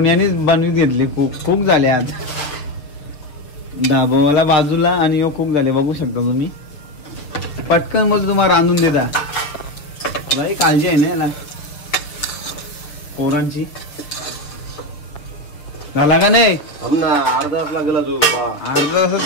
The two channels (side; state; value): right; late; 7.1 ms